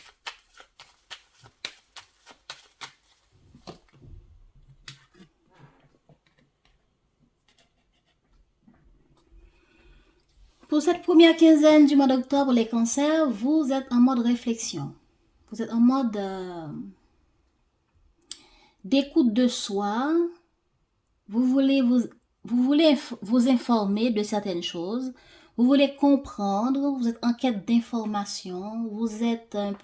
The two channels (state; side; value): identical; both; correlation 1.00